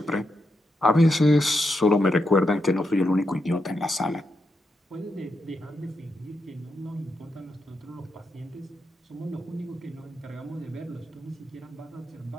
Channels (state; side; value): normal; both; correlation 0.84